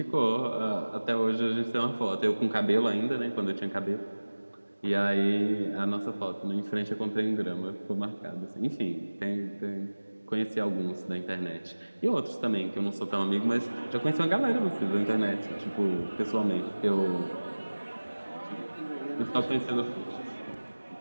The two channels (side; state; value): both; inverted; correlation -1.00